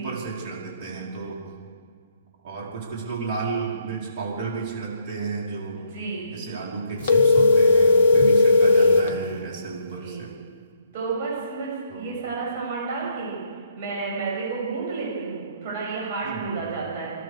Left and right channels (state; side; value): inverted; both; correlation -0.72